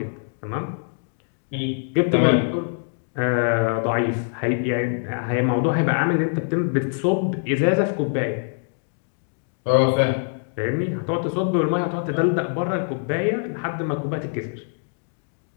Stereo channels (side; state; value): right; silent; 63 dB below the other